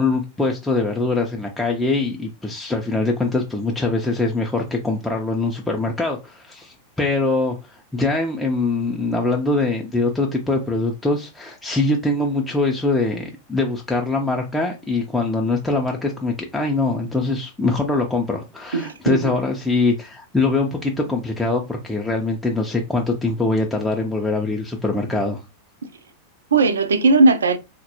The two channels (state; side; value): normal; both; correlation 0.24